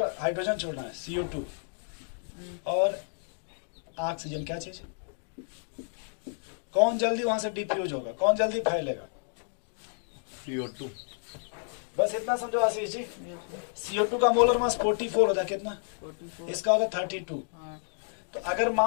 हाइड्रोजन छोड़ना है, CO2 और ऑक्सीजन, क्या चीज, कौन जल्दी वहां से डिफ्यूज होगा, कौन जल्दी फैलेगा? CO2 बस इतना समझो Ashish ji. Yes sir. CO2 का मोलर मास 44 होता है, कितना? 44। इसका होता है 32। हाँ तो अगर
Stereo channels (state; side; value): silent; right; digital silence